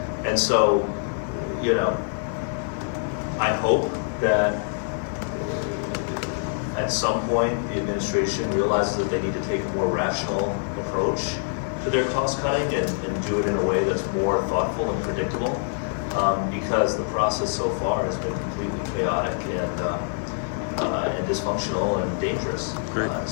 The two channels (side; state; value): right; silent; 55 dB below the other